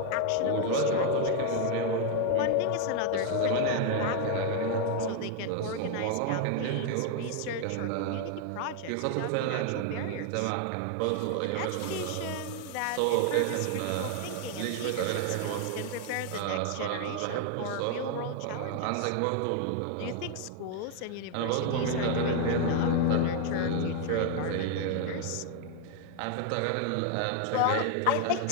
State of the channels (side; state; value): both; different; correlation 0.00